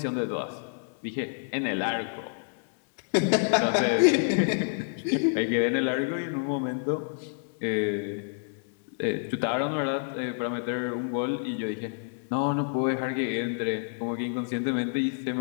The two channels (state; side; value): silent; right; digital silence